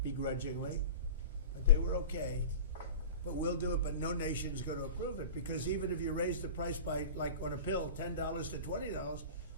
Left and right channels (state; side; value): inverted; both; correlation -0.36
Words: begrudgingly, but they were okay. But we'll do it, but no nation is going to approve it because even if you raise the price by, like on a pill, $10 to $20,